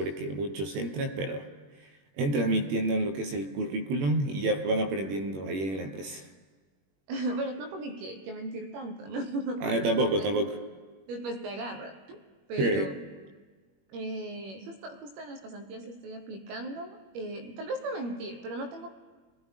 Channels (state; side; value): late; left; 21 ms